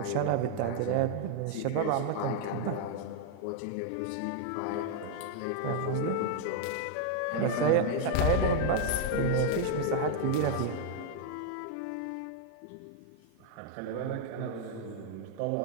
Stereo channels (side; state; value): both; different; correlation 0.00